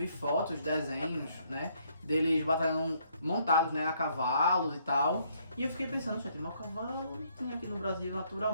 fotos, desenhos, né, deles batalhando montados, né, a cavalos e tal. E eu fiquei pensando, gente, mas o cavalo tem aqui no Brasil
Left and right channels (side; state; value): both; inverted; correlation -0.68